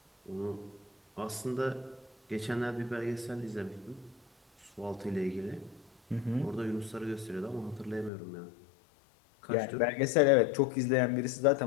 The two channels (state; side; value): drops out; right; at 8.1 s